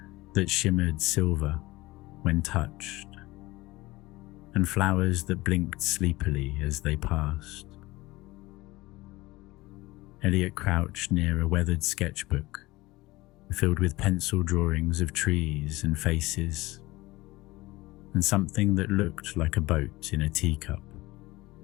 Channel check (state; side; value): quieter; right; 19.9 dB